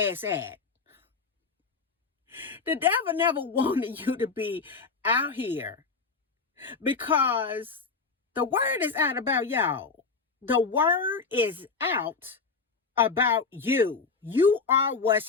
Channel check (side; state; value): right; quieter; 4.7 dB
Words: it's at. The devil never wanted you to be out here, because the word is out about y'all. The word is out about you. You are